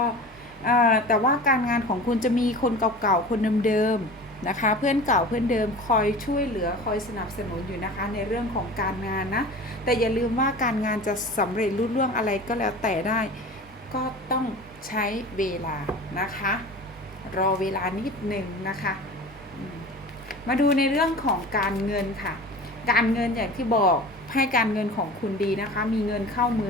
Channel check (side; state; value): both; normal; correlation 0.37